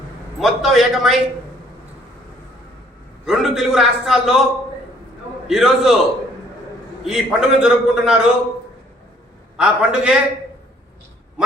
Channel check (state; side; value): normal; both; correlation 0.61